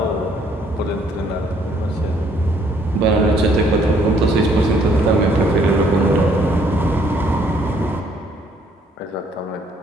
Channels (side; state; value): both; normal; correlation 0.65